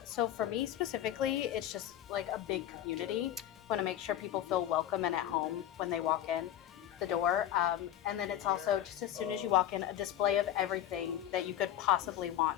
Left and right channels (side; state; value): right; quieter; 11.8 dB